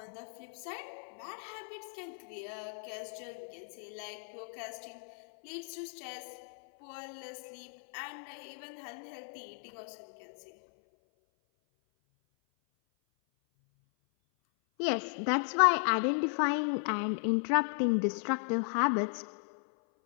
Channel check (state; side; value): silent; right; 54 dB below the other